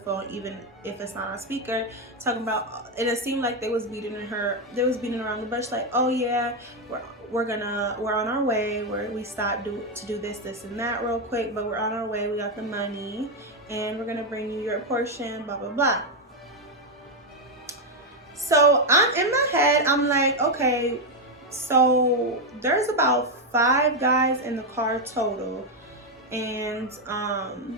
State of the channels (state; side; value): normal; both; correlation 0.04